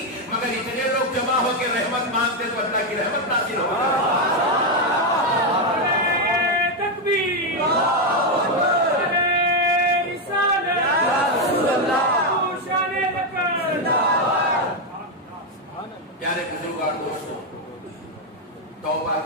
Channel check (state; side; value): normal; both; correlation 0.04